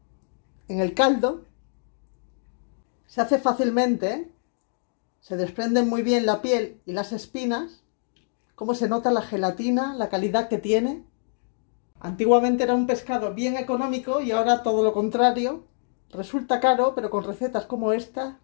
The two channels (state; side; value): silent; right; digital silence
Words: en el caldo. Se hace fácilmente, ¿eh? Se desprenden muy bien la piel y las espinas. Cómo se nota la gelatina, la calidad que tiene. Antiguamente era un pescado bien económico y ahora todo lo contrario. Resulta caro, pero con recetas como esta,